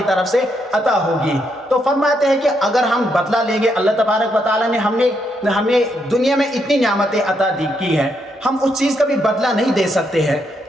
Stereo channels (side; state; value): both; normal; correlation 0.78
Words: طرف سے عطا ہوگی۔ تو فرماتے ہیں کہ اگر ہم بدلہ لیں گے، اللہ تبارک و تعالیٰ نے ہمیں دنیا میں اتنی نعمتیں عطا کی ہیں، ہم اس چیز کا بھی بدلہ نہیں دے سکتے ہیں،